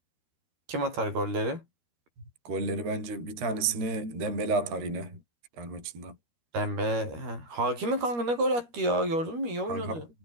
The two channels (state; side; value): late; left; 13 ms